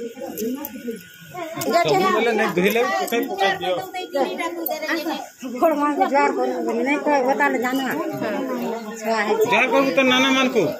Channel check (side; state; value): both; identical; correlation 1.00